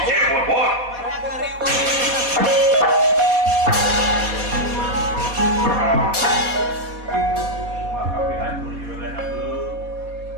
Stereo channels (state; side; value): late; left; 4.2 ms